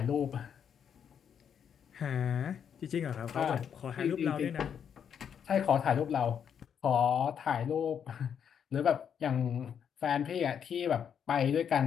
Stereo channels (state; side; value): quieter; right; 8.0 dB